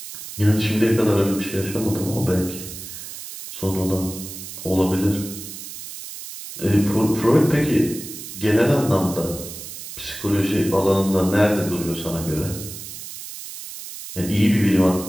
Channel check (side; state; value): right; noise; hiss, 11 dB below the sound